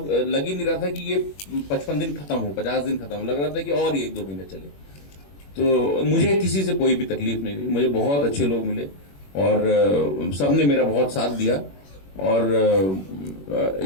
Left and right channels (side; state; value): right; late; 21 ms